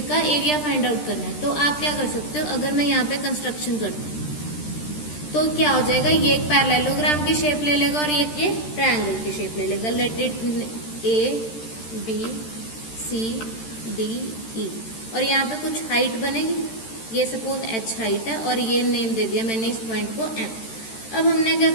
का एरिया फाइंड आउट करना है, तो आप क्या कर सकते हो? अगर मैं यहाँ पे कंस्ट्रक्शन करती हूँ तो क्या हो जाएगा? ये एक पैरेललोग्राम की शेप ले लेगा और ये ट्रायंगल की शेप ले लेगा। लेट इट ABCDE, और यहाँ पे कुछ हाइट बनेगी, ये सपोज H हाइट है और ये नेम दे दिया मैंने इस पॉइंट को M। अब हमने क्या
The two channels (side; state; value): right; late; 13 ms